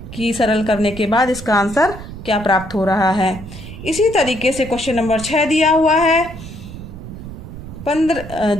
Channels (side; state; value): right; noise; rumble, 12 dB below the sound